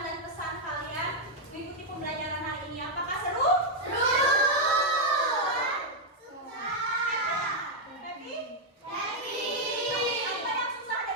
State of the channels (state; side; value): normal; both; correlation -0.01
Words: pesan kalian mengikuti pembelajaran hari ini. Apakah seru? Happy? Apa yang susah